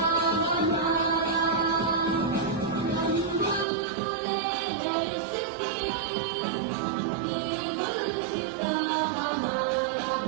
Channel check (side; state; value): left; drops out; at 3.7 s